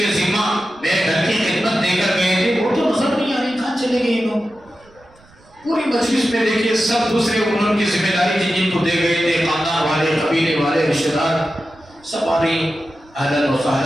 ذمہ میرے گھر کی خدمت دے کر گئے تھے وہ تو نظر نہیں آ رہے، کہاں چلے گئے لوگ. پوری مجلس میں دیکھیے سب دوسرے انہوں کی ذمہ داری تھی جن کو دے گئے تھے، خاندان والے، قبیلے والے، رشتہ دار، سب آ رہی اہلاً و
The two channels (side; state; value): right; noise; rumble, 29 dB below the sound